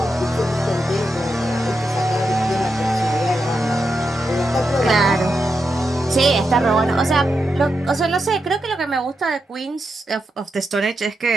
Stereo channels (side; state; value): both; normal; correlation 0.86